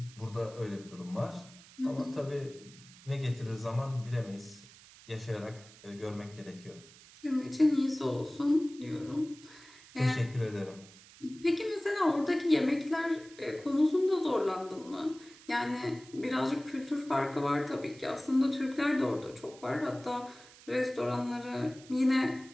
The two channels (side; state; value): right; noise; hiss, 21 dB below the sound